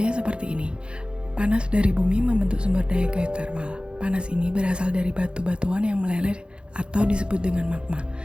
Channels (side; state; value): left; late; 0.054 ms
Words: seperti ini. Panas dari bumi membentuk sumber daya geotermal. Panas ini berasal dari batu-batuan yang meleleh atau disebut dengan magma.